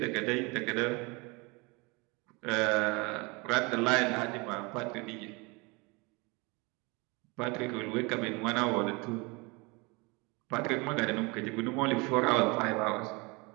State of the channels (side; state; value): left; quieter; 27.2 dB